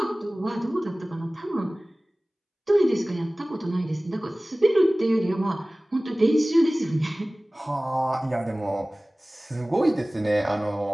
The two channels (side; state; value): both; normal; correlation 0.98